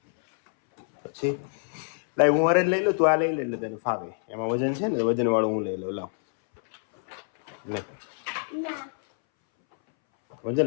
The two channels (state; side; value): silent; right; 61 dB below the other